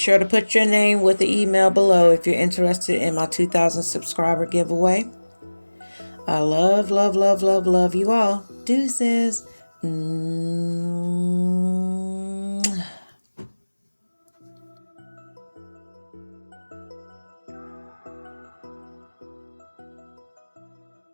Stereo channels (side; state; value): both; inverted; correlation -1.00